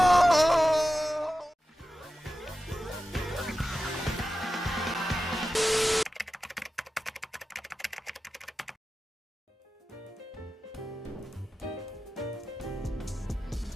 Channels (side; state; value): both; normal; correlation 0.93